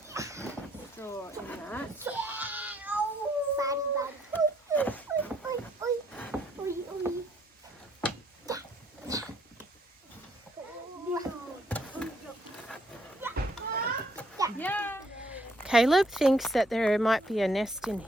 straw in that. Caleb thinks that there might be a nest in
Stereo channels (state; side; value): normal; both; correlation 0.68